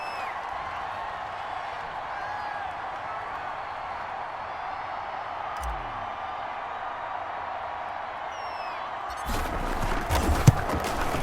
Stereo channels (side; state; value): both; identical; correlation 1.00